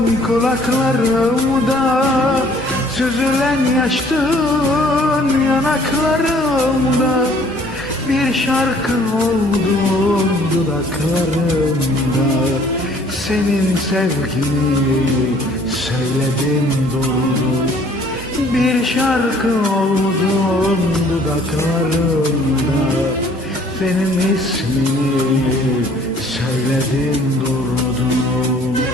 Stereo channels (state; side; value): normal; both; correlation 0.57